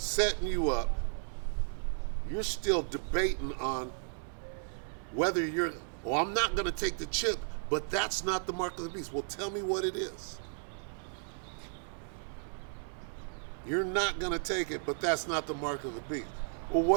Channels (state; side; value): silent; left; 55 dB below the other